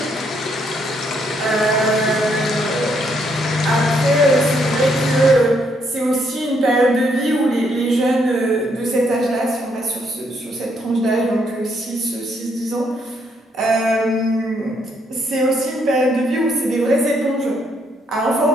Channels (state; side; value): normal; both; correlation 0.73